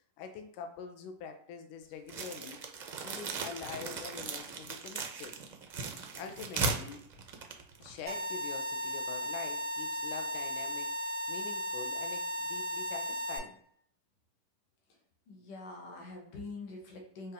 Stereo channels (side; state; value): right; late; 10 ms